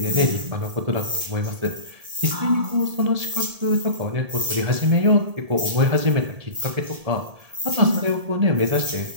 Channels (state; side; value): late; left; 1.7 ms